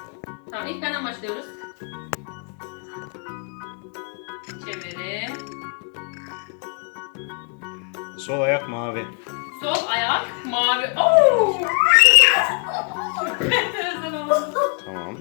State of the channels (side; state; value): right; quieter; 37.7 dB